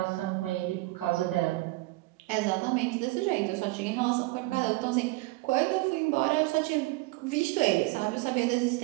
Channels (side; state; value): left; quieter; 21.4 dB